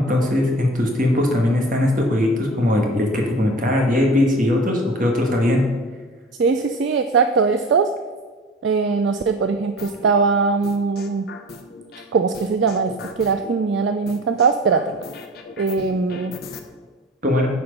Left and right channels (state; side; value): normal; both; correlation 0.37